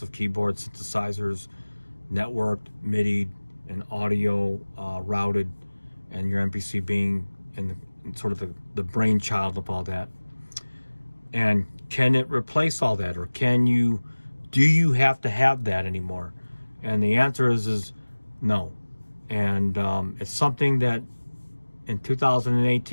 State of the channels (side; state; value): both; inverted; correlation -1.00